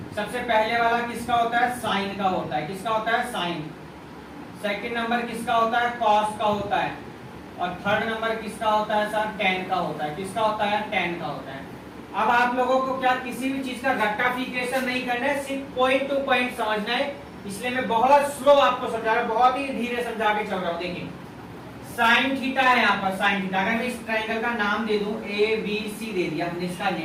सबसे पहले वाला किसका होता है? साइन का होता है। किसका होता है? साइन। सेकंड नंबर किसका होता है? कॉस का होता है। और थर्ड नंबर किसका होता है सर? टेन का होता है। किसका होता है? टेन का होता है। अब आप लोगों को क्या किसी भी चीज का रट्टाफिकेशन नहीं करना है, सिर्फ पॉइंट टू पॉइंट समझना है। इसलिए मैं बहुत स्लो आपको समझा रहा हूं, बहुत ही धीरे समझा के चल रहा हूं। देखिए साइन थीटा है यहाँ पर, साइन थीटा। अगर मैं इस ट्राइंगल का नाम दे दूं ABC दे दिया, हमने इसका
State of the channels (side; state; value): both; identical; correlation 1.00